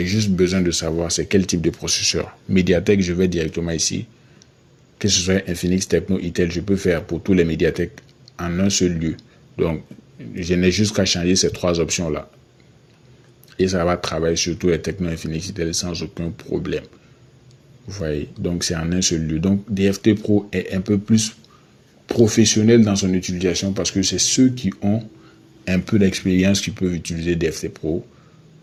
juste besoin de savoir c'est quel type de processeur. Mediatek, je vais directement ici. Que ce soit Infinix, Techno, Itel, je peux faire pour tous les Mediatek en un seul lieu. Donc, je n'ai juste qu'à changer ces 3 options-là. Et ça va travailler sur tous les Techno, Infinix, Itel sans aucun problème. Vous voyez, donc c'est en un seul lieu. Donc, DFT Pro est un peu plus professionnel dans son utilisation parce que c'est ceux qui ont un peu d'expérience qui peuvent utiliser DFT Pro.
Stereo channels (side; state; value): both; identical; correlation 1.00